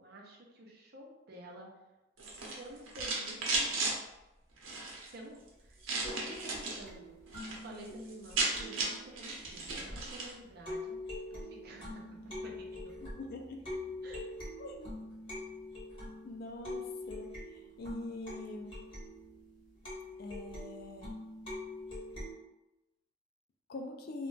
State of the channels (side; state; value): both; normal; correlation 0.22